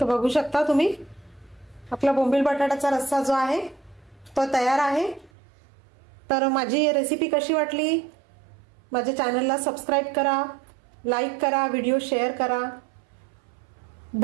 बघू शकता तुम्ही आपला बोंबील बटाट्याचा रस्सा जो आहे तो तयार आहे. तर माझी रेसिपी कशी वाटली? माझ्या चॅनलला सबस्क्राईब करा, लाईक करा, व्हिडिओ शेअर करा.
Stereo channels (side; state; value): left; drops out; at 5.3 s